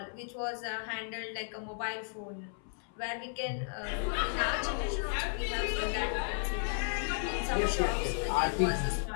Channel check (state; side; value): silent; right; 55 dB below the other